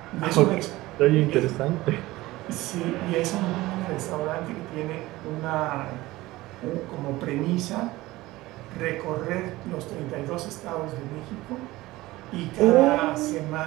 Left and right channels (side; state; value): left; quieter; 18.5 dB